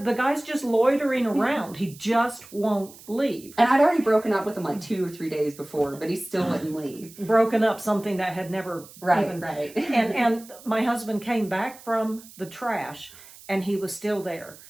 the guy's just loitering around. He just won't leave. And I'd already broken up with him like 2 or 3 days before, but he still wouldn't leave. Broken up something that had never even... Right. And my husband came back from the trash, and he was still there.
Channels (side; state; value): right; noise; hiss, 20 dB below the sound